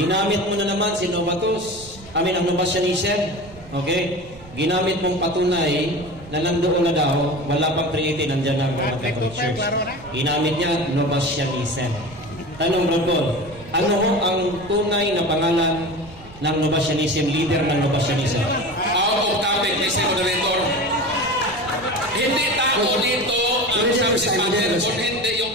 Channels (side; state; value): right; noise; rumble, 19 dB below the sound